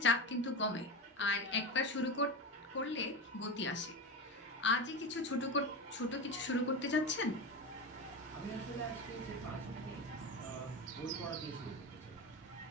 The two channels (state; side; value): normal; both; correlation 0.21